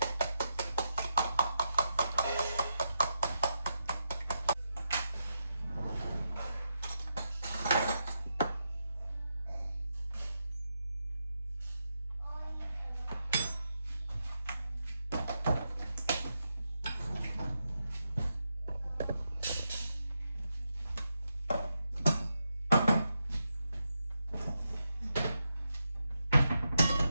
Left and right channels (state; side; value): inverted; both; correlation -0.85